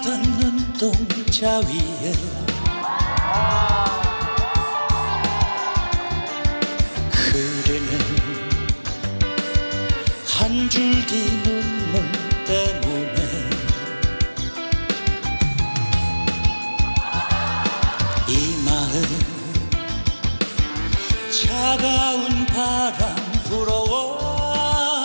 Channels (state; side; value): inverted; both; correlation -1.00